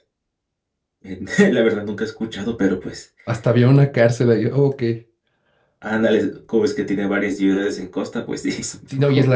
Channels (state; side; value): identical; both; correlation 1.00